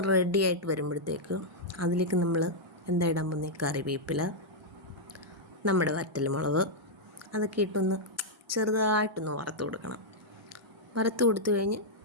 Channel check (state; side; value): normal; both; correlation -0.06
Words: റെഡിയായിട്ട് വരുമ്പോഴത്തേക്ക് അതിലേക്ക് നമ്മൾ എന്താ ഇടാൻ പോകുന്നത്? കറിവേപ്പില, നമ്മുടെ വറ്റൽമുളക്, അതൊക്കെ ഇട്ടൊന്ന് ചെറുതായിട്ടൊന്ന് വറുത്ത് കൊടുക്കണം. വറുത്ത് കൊടുത്തു കഴിഞ്ഞ്